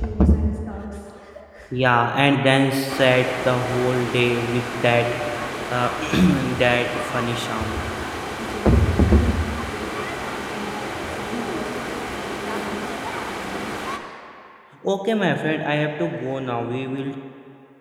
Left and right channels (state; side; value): identical; both; correlation 1.00